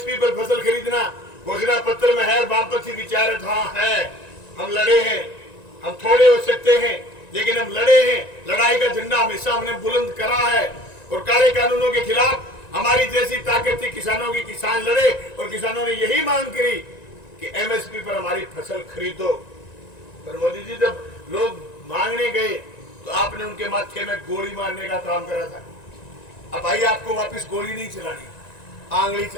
पर फसल खरीदना घोषणा पत्र में है, वामपंथी विचार है, हम लड़े हैं, हम थोड़े हो सकते हैं लेकिन हम लड़े हैं। लड़ाई का झंडा हमेशा हमने बुलंद करा है और काले कानूनों के खिलाफ हमारी जैसी ताकत थी किसानों की, किसान लड़े और किसानों ने यही मांग करी कि एमएसपी पर हमारी फसल खरीदो। पर मोदी जी जब लोग मांगने गए तो आपने उनके माथे में गोली मारने का काम करा था। अब भाई आपको वापस गोली नहीं चलानी, आंगली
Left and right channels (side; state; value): right; late; 1.9 ms